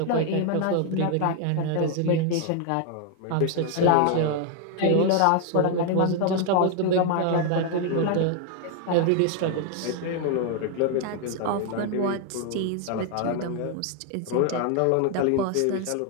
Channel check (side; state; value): both; different; correlation 0.00